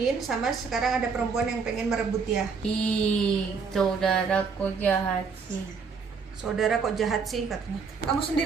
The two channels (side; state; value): left; quieter; 5.3 dB